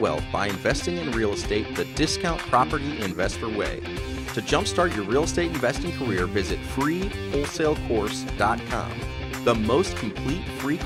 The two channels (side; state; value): both; identical; correlation 1.00